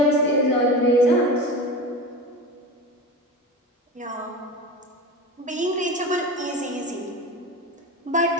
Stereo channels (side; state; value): both; normal; correlation 0.28